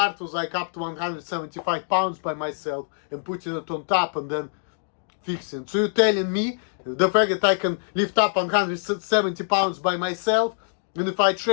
was like up to 175 pounds by myself and putting it on top and then fixing. So you're telling me the fact that I can lift up 170 pounds by myself, and if I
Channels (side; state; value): right; silent; digital silence